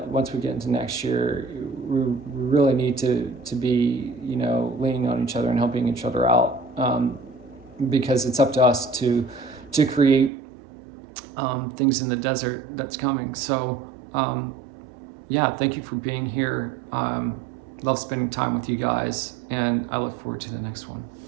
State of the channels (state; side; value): drops out; left; at 10.3 s